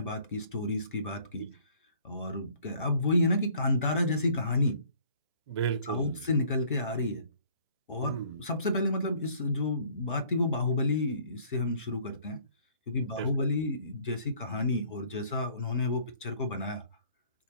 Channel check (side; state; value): both; inverted; correlation -0.56